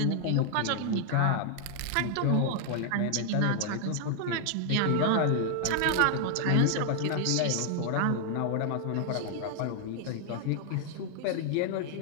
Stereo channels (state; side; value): different; both; correlation 0.00